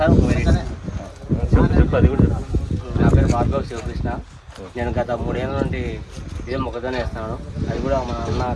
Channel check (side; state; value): both; identical; correlation 1.00